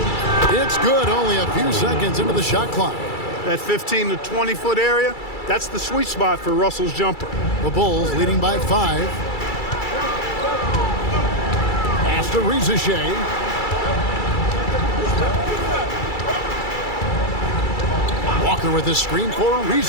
It's good, only a few seconds into the shot clock. That 15 to 20 foot area, that's the sweet spot for Russell's jumper. The Bulls leading by 5. Pass to Rizachet. Walker with the screen for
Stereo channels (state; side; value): late; right; 2.3 ms